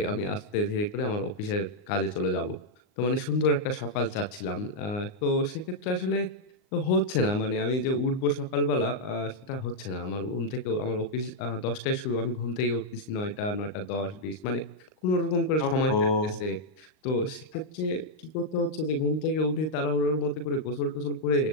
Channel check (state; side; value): late; right; 39 ms